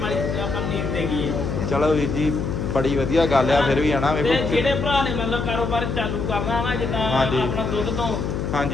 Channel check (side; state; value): left; noise; hum, 2 dB below the sound